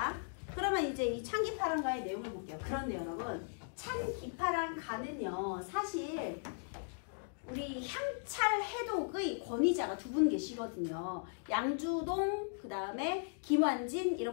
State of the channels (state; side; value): silent; right; digital silence